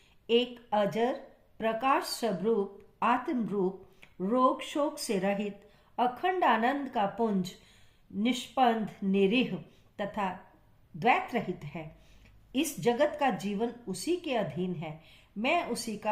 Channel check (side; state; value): both; identical; correlation 1.00